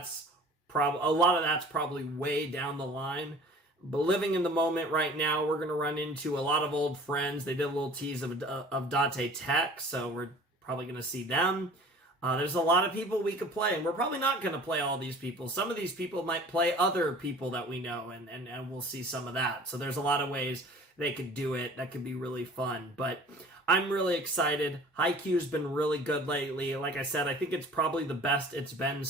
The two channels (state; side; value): normal; both; correlation 0.46